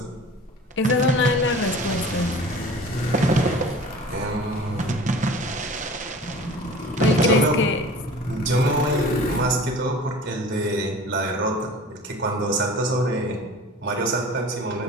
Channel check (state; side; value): normal; both; correlation 0.42